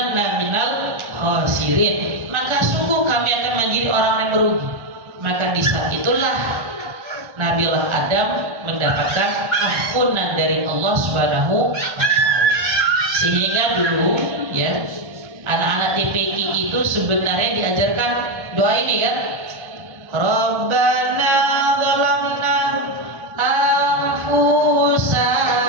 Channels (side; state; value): left; late; 1.3 ms